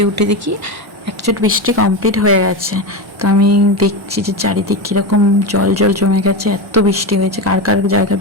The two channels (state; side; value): normal; both; correlation 0.17